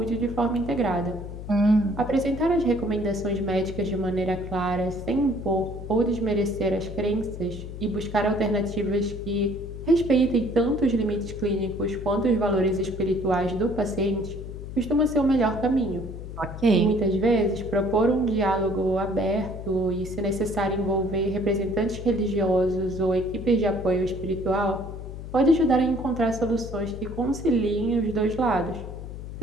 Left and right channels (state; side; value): noise; left; hum, 10 dB below the sound